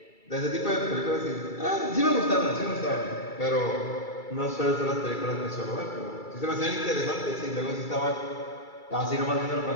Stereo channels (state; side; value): late; right; 2.3 ms